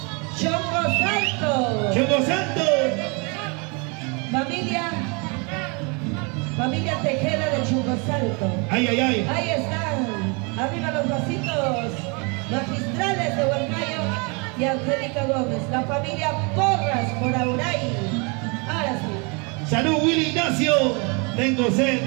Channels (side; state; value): left; quieter; 32.1 dB